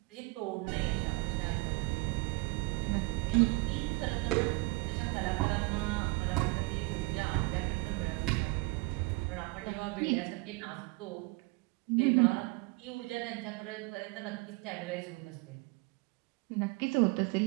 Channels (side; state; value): left; quieter; 25.9 dB